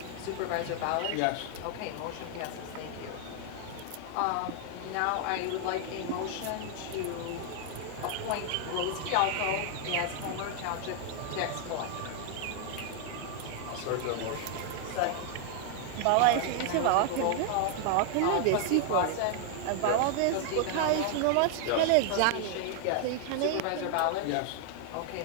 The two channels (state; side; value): different; both; correlation 0.00